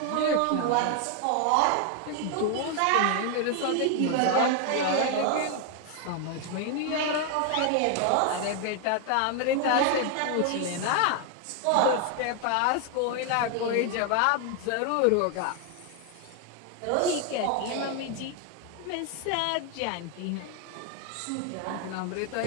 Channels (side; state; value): both; different; correlation 0.00